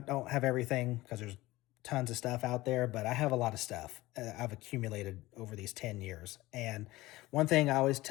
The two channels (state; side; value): quieter; right; 18.6 dB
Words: have everything because there's tons of stuff out there, but I have a lot of stuff I've accumulated over these 10 years. And one thing I always